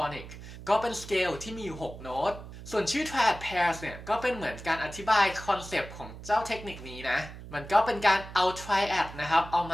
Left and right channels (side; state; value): right; noise; hum, 14 dB below the sound